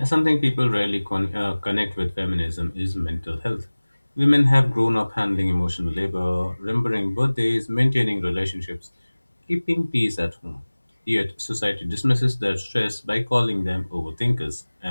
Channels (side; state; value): both; inverted; correlation -1.00